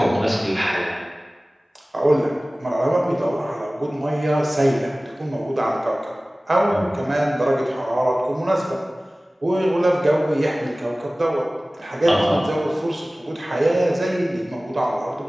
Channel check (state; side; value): normal; both; correlation 0.98